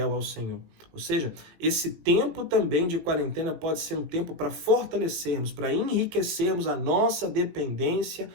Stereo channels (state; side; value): late; left; 18 ms